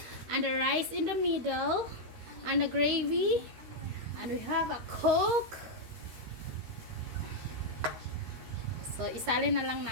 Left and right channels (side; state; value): left; late; 13 ms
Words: and the rice in the middle and the gravy. And we have a Coke. So, isalin na lang